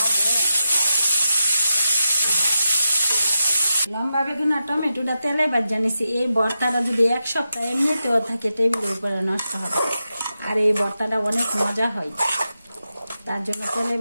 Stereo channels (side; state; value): both; inverted; correlation -0.89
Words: লম্বা বেগুন আর টমেটোটা তেলে ভাজা নিছি। এই ভর্তাটা যদি এক সপ্তাহ এমনিতেও থাকে টেবিলের উপরে নষ্ট হবে, আর এই ভর্তাটা অনেক মজা হয়, তার জন্য তেলে